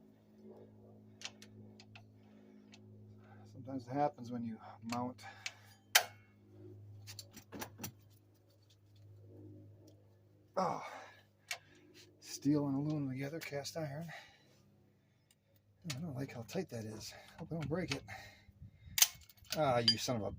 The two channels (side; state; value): both; identical; correlation 1.00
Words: Sometimes it happens when you mount steel and aluminum together, cast iron. I don't like how tight that is. Hope I don't break it. Ah, you son of a